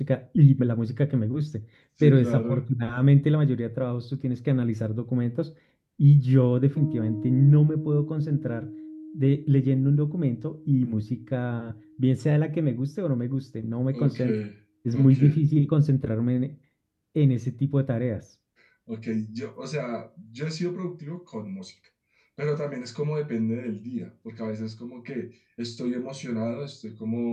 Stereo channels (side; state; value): both; identical; correlation 1.00